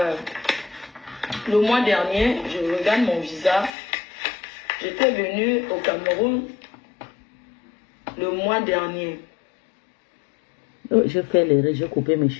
le mois dernier, je regarde mon visa. J'étais venue au Cameroun le mois dernier. Oh, je fais l'erreur, j'ai coupé mes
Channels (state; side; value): drops out; right; at 3.7 s